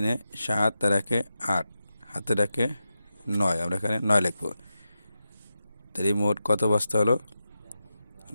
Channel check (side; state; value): both; inverted; correlation -0.90